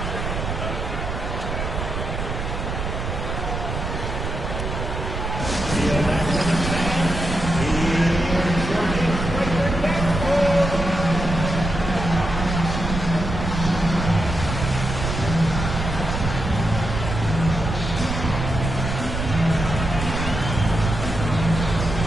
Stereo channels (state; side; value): noise; right; rumble, 4 dB below the sound